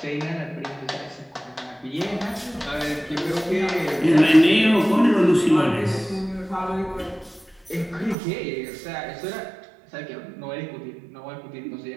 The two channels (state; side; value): drops out; left; at 8.2 s